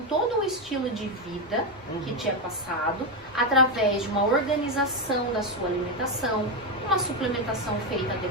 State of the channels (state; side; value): normal; both; correlation 0.08